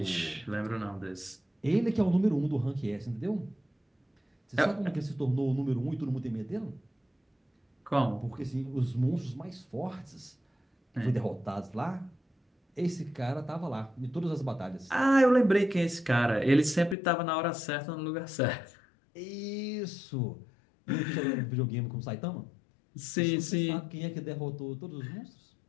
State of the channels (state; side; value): drops out; right; at 16.9 s